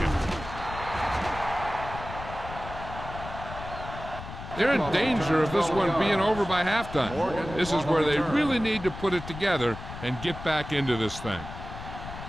They're in danger of this one being over by halftime. This is where they really need to put it together and get back into this thing.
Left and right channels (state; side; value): noise; left; rumble, 11 dB below the sound